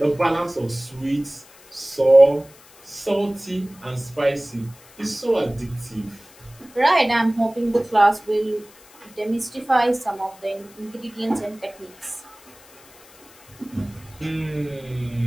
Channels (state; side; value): noise; left; hiss, 24 dB below the sound